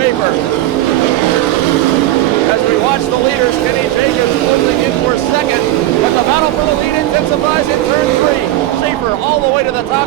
As we watch the leaders, Kenny Jacobs closing in for second, but the battle for the lead intensifies in turn 3. Schaefer all the way to the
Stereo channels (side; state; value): left; quieter; 15.0 dB